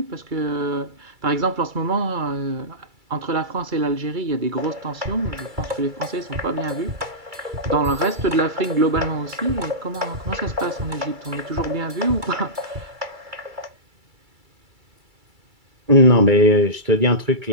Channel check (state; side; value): late; left; 2.3 ms